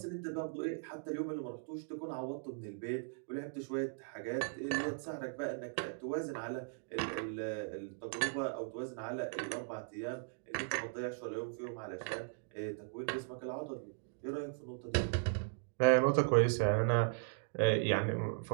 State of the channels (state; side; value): silent; left; digital silence